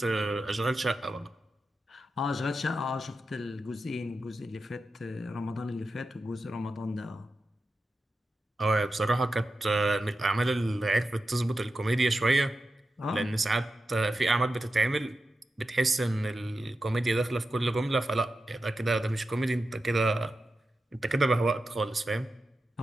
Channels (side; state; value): both; normal; correlation 0.90